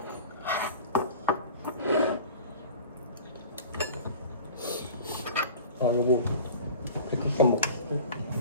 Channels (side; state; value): both; inverted; correlation -0.40